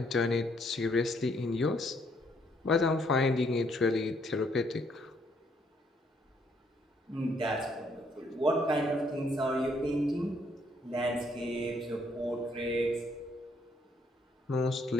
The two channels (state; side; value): normal; both; correlation 0.69